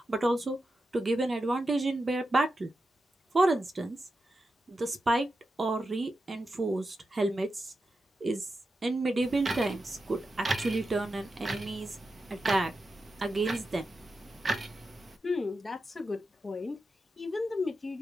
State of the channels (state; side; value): normal; both; correlation 0.89